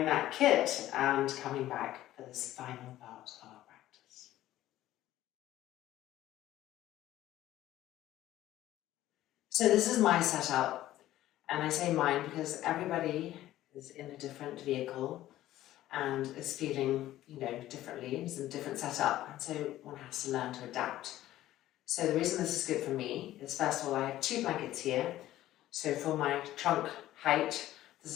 that kit and coming back for this final part of our practice. So this is my setup, and I say mine because everybody is in a different vehicle and is feeling, differently. It's a different setup, and so one has to learn to adapt. So the reason this is good for me is, first of all, I have 2 blankets here. So for my trunk height, this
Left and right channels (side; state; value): right; quieter; 14.3 dB